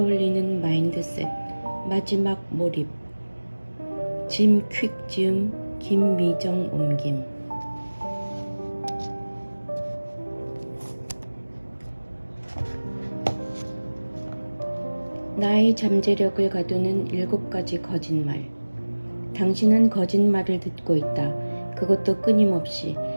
마인드셋. 마지막 몰입. 짐 퀵 지음 김미정 옮김. 나의 잠재력을 가두는 7가지 거짓말. 당신은 거짓말을 듣고 있다. 그것도 끊임없이.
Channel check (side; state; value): both; inverted; correlation -1.00